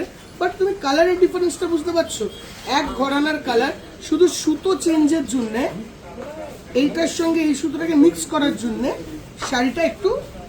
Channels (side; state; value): both; identical; correlation 1.00